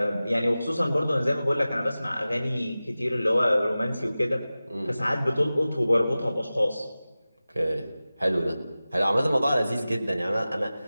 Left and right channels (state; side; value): inverted; both; correlation -0.96